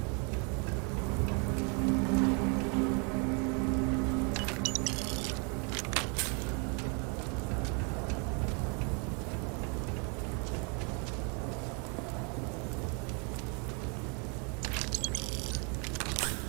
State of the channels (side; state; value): left; quieter; 35.4 dB